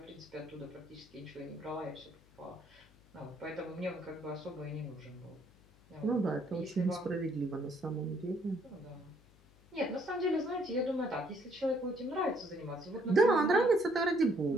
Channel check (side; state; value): left; noise; hum, 27 dB below the sound